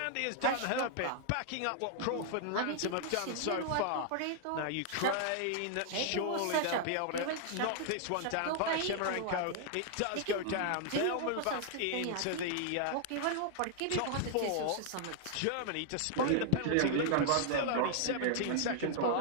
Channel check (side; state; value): both; different; correlation 0.00